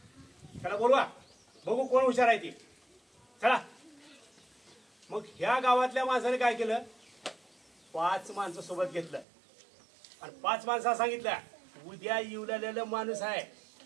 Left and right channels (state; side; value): drops out; left; at 9.2 s